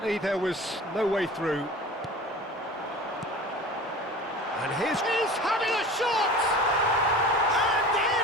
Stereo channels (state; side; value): normal; both; correlation 0.38